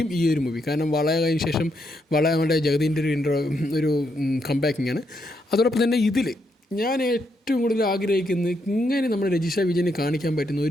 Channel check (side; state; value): both; normal; correlation 0.78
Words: ഈ ഒരു മൂവി. കാരണം വളയ കഴിഞ്ഞ ശേഷം നമ്മുടെ ജഗദീൻ്റെ ഒരു കംബാക്കിംഗ് ആണ്. അതോടൊപ്പം തന്നെ ഇതിൽ ഞാൻ ഏറ്റവും കൂടുതൽ ആഗ്രഹിക്കുന്നത് ഇങ്ങനെ നമ്മുടെ രജിഷ വിജയനെ കാണിക്കാൻ പറ്റുന്ന